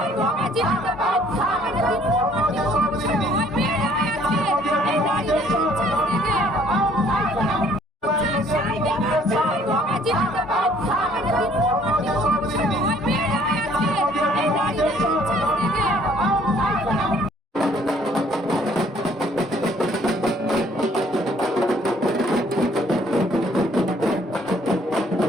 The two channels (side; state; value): both; normal; correlation 0.60